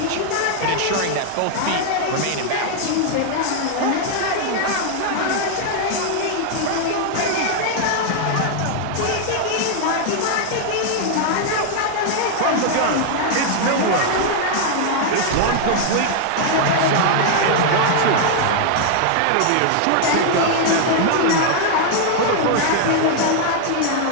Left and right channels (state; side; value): different; both; correlation 0.00